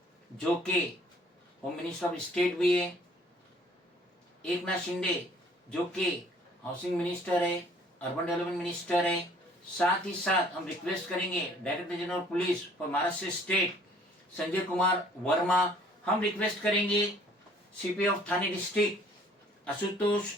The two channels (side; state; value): both; normal; correlation 0.57